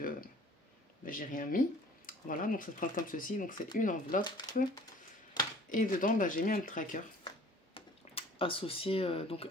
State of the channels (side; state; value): both; normal; correlation 0.51